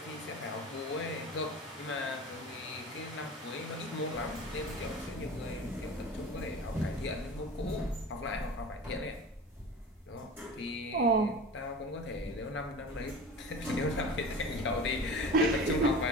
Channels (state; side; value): normal; both; correlation 0.35